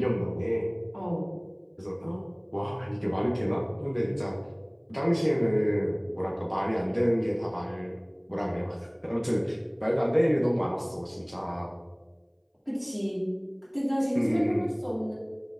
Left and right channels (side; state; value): both; identical; correlation 1.00